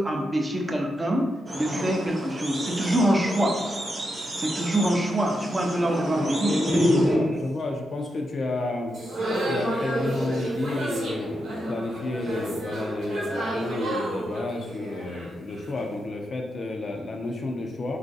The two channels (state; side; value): normal; both; correlation 0.85